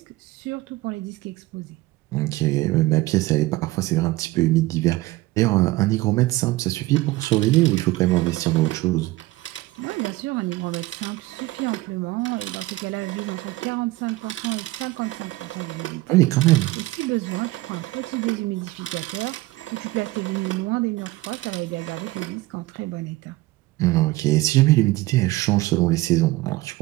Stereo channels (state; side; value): quieter; left; 18.9 dB